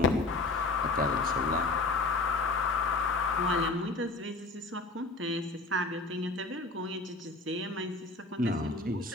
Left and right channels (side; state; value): right; quieter; 3.3 dB